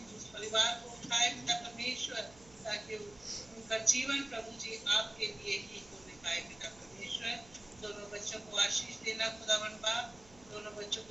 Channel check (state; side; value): noise; right; hum, 24 dB below the sound